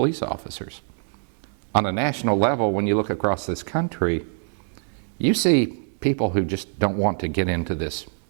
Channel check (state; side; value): silent; left; 62 dB below the other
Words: officers. On a national level, when you look across this country, you see people who just don't want to get into this